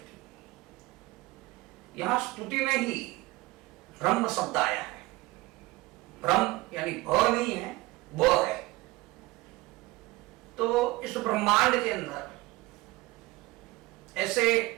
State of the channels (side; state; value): left; quieter; 20.7 dB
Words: यहां स्तुति में ही ब्रह्म शब्द आया है। ब्रह्म यानी भ नहीं है, ब है। तो इस ब्रह्मांड के अंदर ऐसे